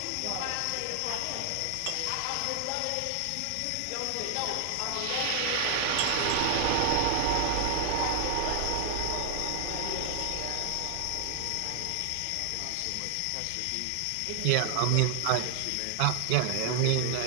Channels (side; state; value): both; different; correlation 0.00